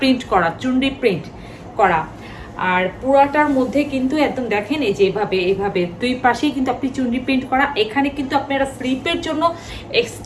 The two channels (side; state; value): both; identical; correlation 1.00